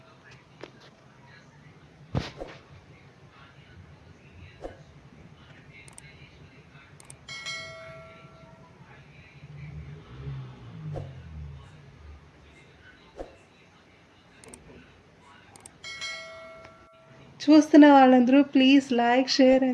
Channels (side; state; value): both; identical; correlation 1.00